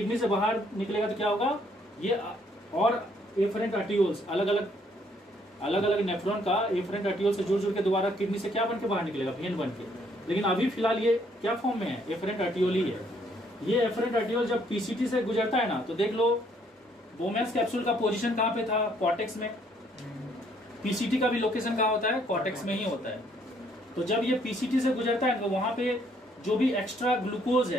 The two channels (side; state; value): both; normal; correlation 0.67